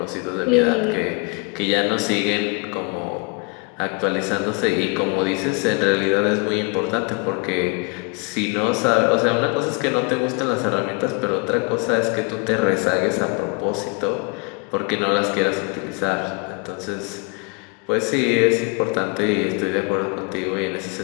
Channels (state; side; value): quieter; right; 31.8 dB